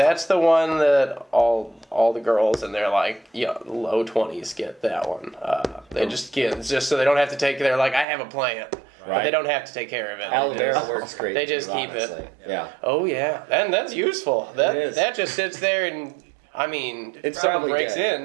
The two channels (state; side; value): drops out; left; at 8.1 s